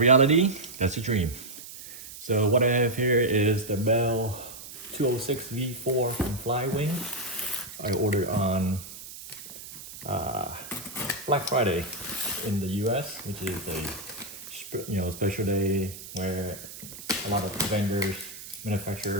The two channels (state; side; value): noise; right; hiss, 13 dB below the sound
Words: that's a dream. So what I have here is the Bell 206 V4 from Flywing. I ordered on Black Friday in the US, which is a special day where a lot of vendors,